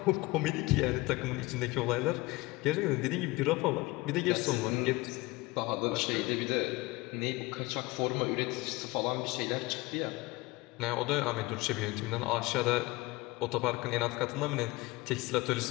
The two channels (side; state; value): right; quieter; 21.2 dB